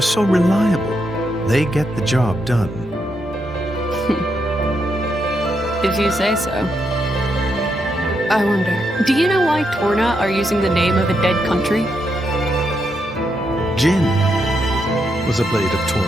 reliable. They get the job done. If you say so. I wonder, do you know why Torna are using the name of a dead country? Jin was a blade of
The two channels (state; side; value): normal; both; correlation 0.80